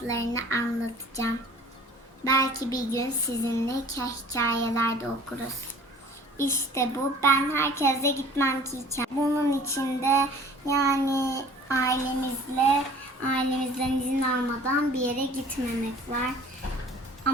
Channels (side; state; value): both; normal; correlation 0.49